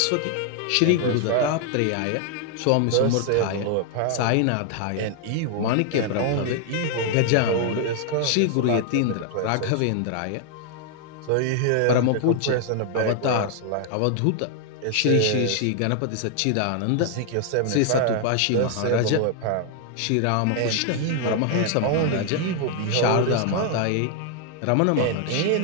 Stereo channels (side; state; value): both; different; correlation 0.00